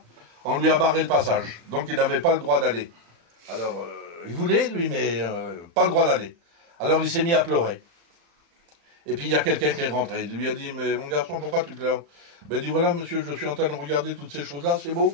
on lui a barré le passage. Donc il n'avait pas le droit d'aller. Alors, il voulait, lui, mais pas le droit d'aller. Alors il s'est mis à pleurer. Et puis il y a quelqu'un qui est rentré. Il lui a dit, mais mon garçon, pourquoi tu pleures? Ben il dit, voilà monsieur, je suis en train de regarder toutes ces choses-là, c'est beau.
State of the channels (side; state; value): left; late; 35 ms